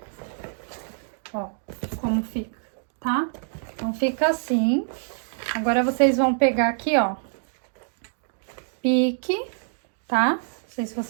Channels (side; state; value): left; silent; 61 dB below the other